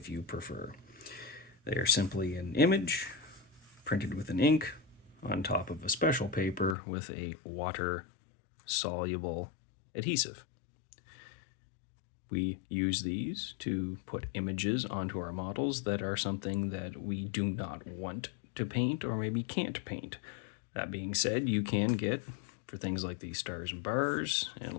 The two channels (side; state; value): right; drops out; at 6.8 s